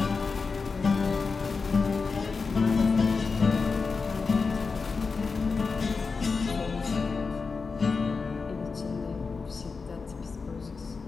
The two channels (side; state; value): right; quieter; 4.7 dB